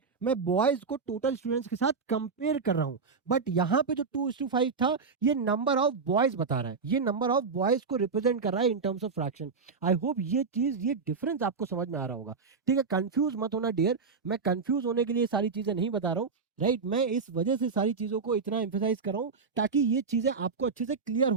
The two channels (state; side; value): quieter; left; 5.0 dB